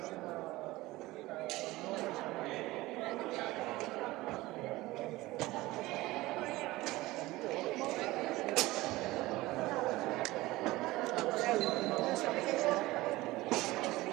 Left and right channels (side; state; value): left; quieter; 19.0 dB